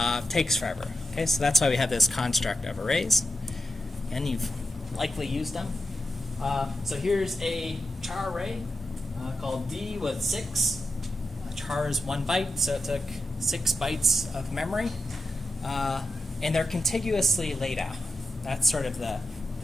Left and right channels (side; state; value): both; normal; correlation 0.89